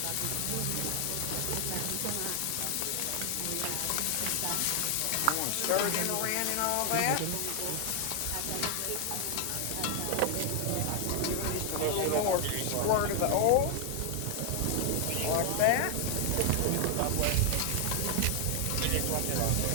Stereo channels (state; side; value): different; both; correlation 0.00